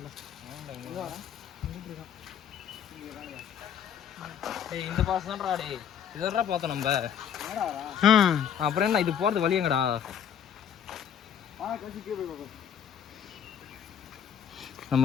டேய் இந்த பாஸ் தான்டா டேய் இதெல்லாம் பார்த்தோம் நம்ம. ம் அப்புறம் என்ன இது போகிறது வழி எங்கடா?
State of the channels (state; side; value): quieter; right; 8.6 dB